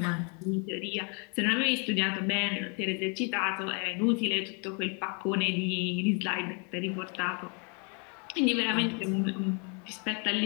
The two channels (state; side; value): quieter; right; 36.5 dB